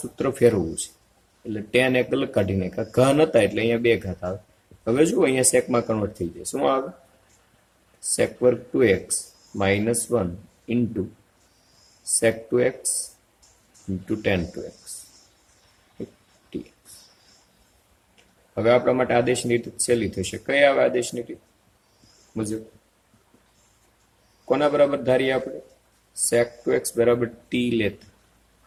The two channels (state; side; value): identical; both; correlation 1.00